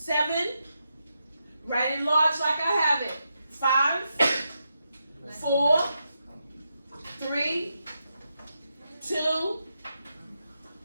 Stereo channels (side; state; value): both; inverted; correlation -0.85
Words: write it large like I have it. 5, 4, 3, 2,